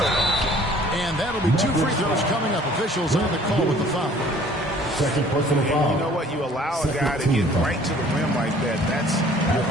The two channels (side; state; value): both; normal; correlation 0.54